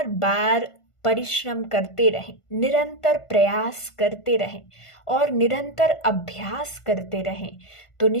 बार परिश्रम करते रहें, निरंतर प्रयास करते रहें और निरंतर अभ्यास करते रहें, तो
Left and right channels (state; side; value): late; right; 1.5 ms